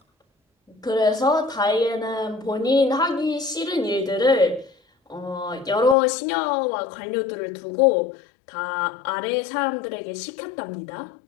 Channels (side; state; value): right; drops out; at 6.0 s